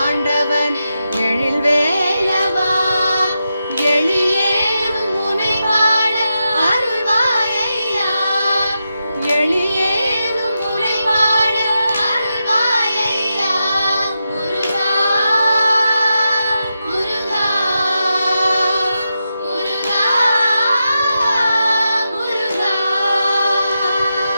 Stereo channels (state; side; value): inverted; both; correlation -0.88